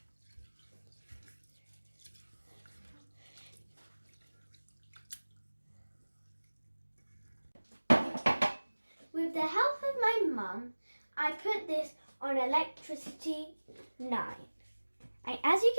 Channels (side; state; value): both; inverted; correlation -1.00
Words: With the help of my mum, I put this on electricity 9. And as you